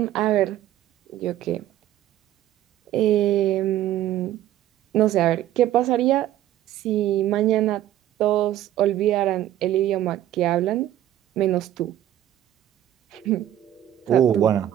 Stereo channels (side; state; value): left; quieter; 12.5 dB